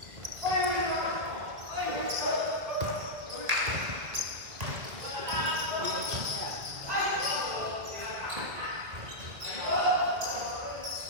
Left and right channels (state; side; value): late; left; 2.2 ms